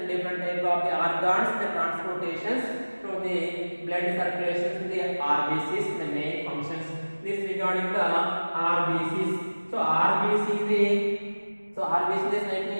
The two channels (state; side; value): inverted; both; correlation -1.00